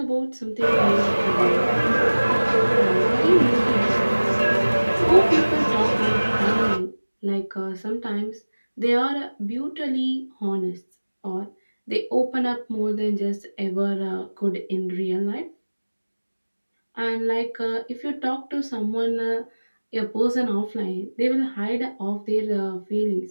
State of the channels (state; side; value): inverted; both; correlation -1.00